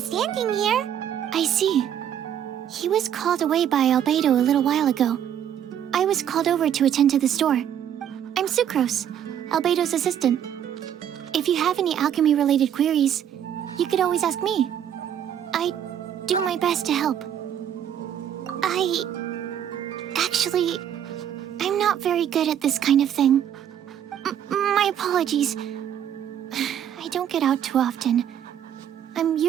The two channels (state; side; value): quieter; left; 9.7 dB